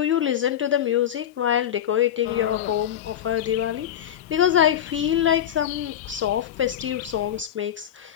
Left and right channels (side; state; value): right; quieter; 10.4 dB